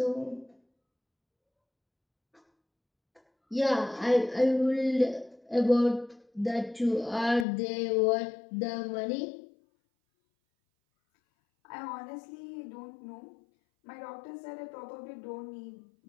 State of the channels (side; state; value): right; drops out; at 7.5 s